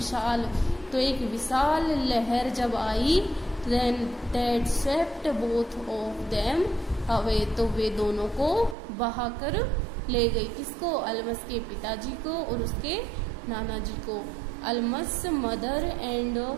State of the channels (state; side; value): drops out; left; at 8.8 s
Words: तो एक विशाल लहर जब आई, then that swept both of them away, तो वे दोनों को बहाकर ले गई। किसको? अल्मस के पिताजी को और उसके नाना जी को। Almas mother and